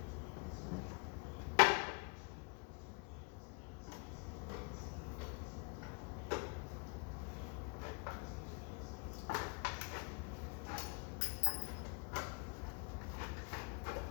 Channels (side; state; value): right; quieter; 36.0 dB